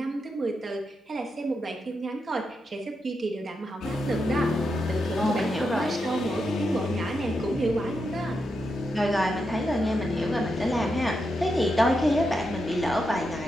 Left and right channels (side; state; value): both; normal; correlation 0.85